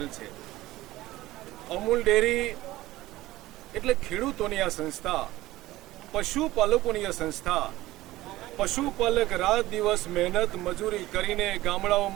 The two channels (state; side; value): quieter; left; 17.0 dB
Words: છે. અમૂલ ડેરી એટલે ખેડૂતોની આ સંસ્થા, પશુપાલકોની આ સંસ્થા. પશુપાલક રાત દિવસ મહેનત મજૂરી કરીને